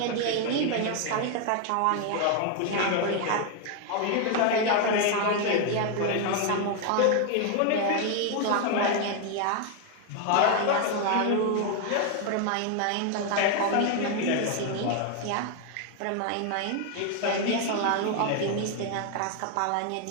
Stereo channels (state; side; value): different; both; correlation 0.01